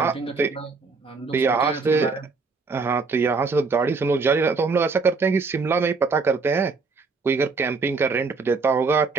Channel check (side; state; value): left; quieter; 4.4 dB